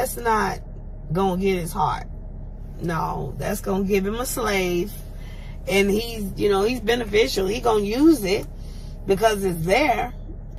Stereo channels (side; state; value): both; identical; correlation 1.00